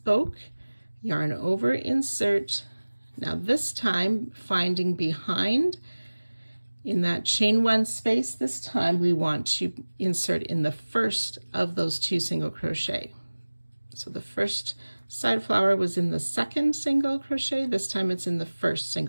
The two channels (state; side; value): inverted; both; correlation -1.00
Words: yarn over, insert. Now this time, finding behind in that chain 1 space, this time we want to insert in the first of those 2 single crochet. So the first side flower was in the second single crochet. This time it's in the first